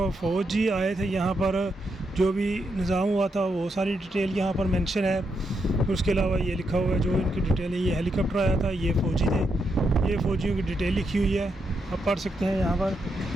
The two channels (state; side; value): normal; both; correlation 0.82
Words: फ़ौजी आए थे यहाँ पर, जो भी निज़ाम हुआ था वो सारी डिटेल यहाँ पर मेंशन है। उसके अलावा ये लिखा हुआ है जो इनकी डिटेल है। ये हेलीकॉप्टर आया था, ये फ़ौजी थे, ये फ़ौजियों की डिटेल लिखी हुई है, आप पढ़ सकते हैं यहाँ पर।